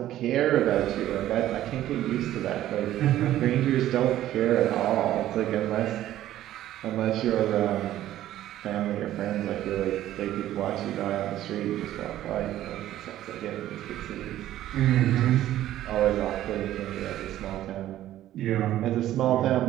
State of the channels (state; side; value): quieter; left; 13.3 dB